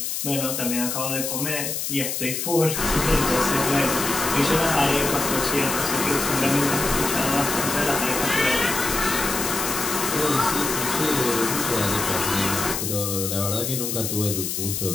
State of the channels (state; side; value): noise; left; hiss, 2 dB below the sound